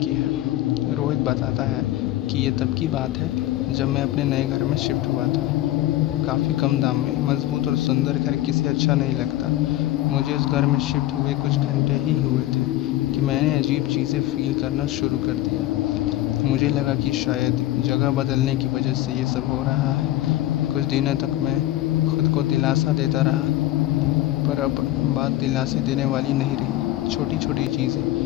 है। रोहित बताता है कि ये तब की बात है जब मैं अपने नए घर में शिफ्ट हुआ था। काफ़ी कम दाम में मजबूत और सुंदर घर किसे अच्छा नहीं लगता। मुझे उस घर में शिफ्ट हुए कुछ घंटे ही हुए थे कि मैंने अजीब चीज़ें फील करना शुरू कर दिया। मुझे लगा कि शायद जगह बदलने की वजह से ये सब हो रहा है। कुछ दिनों तक मैं खुद को दिलासा देता रहा, पर अब बात दिलासे देने वाली नहीं रही। छोटी छोटी चीज़ें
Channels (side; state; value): right; quieter; 15.2 dB